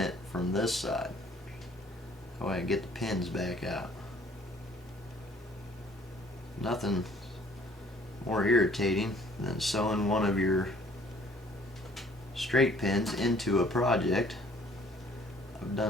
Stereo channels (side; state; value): both; normal; correlation 0.58